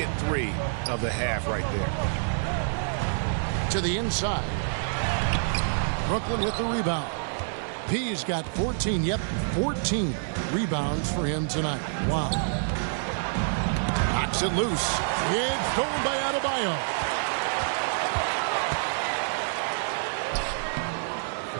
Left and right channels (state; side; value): silent; left; 60 dB below the other